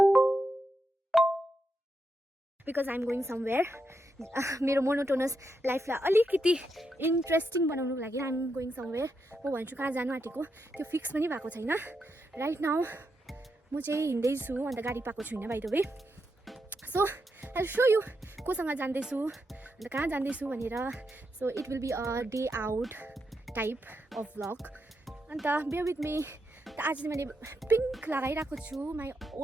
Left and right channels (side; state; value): both; normal; correlation 0.84